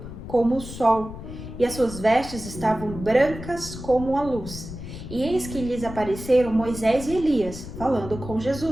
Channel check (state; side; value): noise; left; rumble, 11 dB below the sound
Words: como o sol, e as suas vestes estavam brancas como a luz. E eis que lhes apareceram Moisés e Elias, falando com